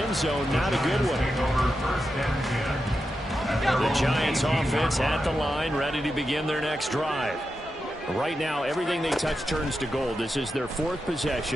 zone, not a good one. The Giants offense at the line, ready to begin their next drive. Right now, everything they touch turns to gold. This is their 4th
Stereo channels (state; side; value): normal; both; correlation 0.89